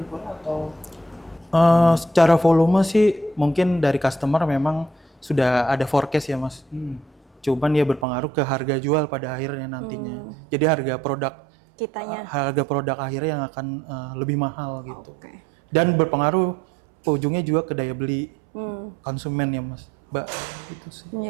atau? Secara volume sih mungkin dari customer memang sudah ada forecast ya Mas. Cuman ya berpengaruh ke harga jual pada akhirnya nantinya. Jadi harga produk akhirnya yang akan lebih mahal gitu. Dan berpengaruh ujungnya juga ke daya beli konsumen ya Mas. Mbak, itu sih.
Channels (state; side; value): drops out; left; at 8.1 s